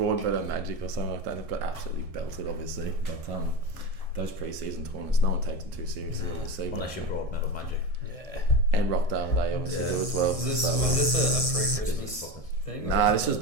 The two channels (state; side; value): late; left; 1.6 ms